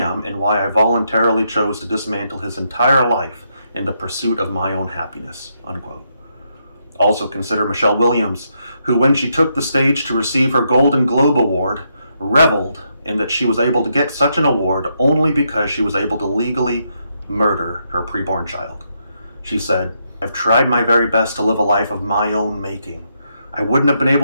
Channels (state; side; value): inverted; both; correlation -0.79